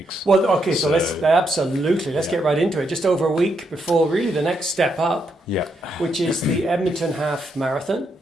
Well, okay, so let's get right into it. Just over a week before really the next step up, which is the Edmonton Half Marathon.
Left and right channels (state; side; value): normal; both; correlation 0.79